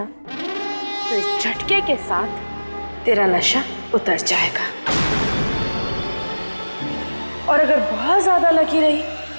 तो इस झटके के साथ तेरा नशा उतर जाएगा, और अगर बहुत ज्यादा लकी रही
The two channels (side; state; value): both; inverted; correlation -1.00